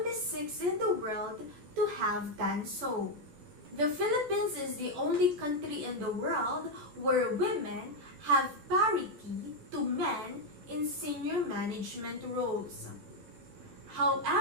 6 in the world to have done so. The Philippines is the only country in the world where women have parity to men in senior management roles.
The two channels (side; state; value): left; late; 14 ms